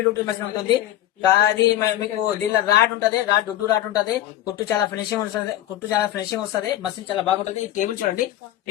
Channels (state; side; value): quieter; right; 13.2 dB